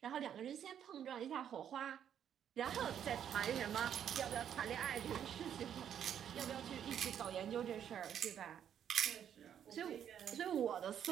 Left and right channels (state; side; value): quieter; left; 9.3 dB